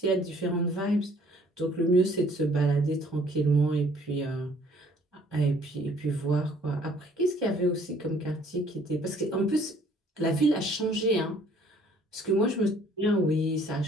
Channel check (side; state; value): both; normal; correlation 0.59